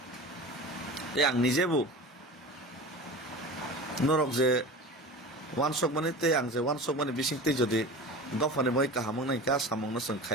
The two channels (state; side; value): normal; both; correlation 0.34